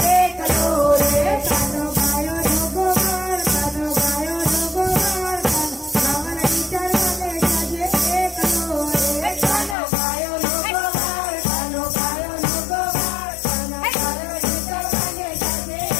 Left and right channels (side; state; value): right; drops out; at 9.8 s